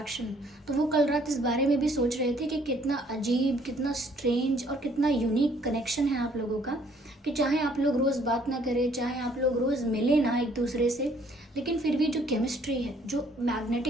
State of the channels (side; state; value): both; normal; correlation 0.62